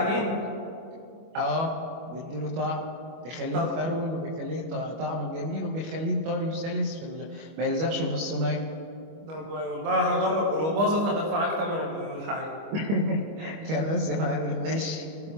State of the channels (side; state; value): left; late; 25 ms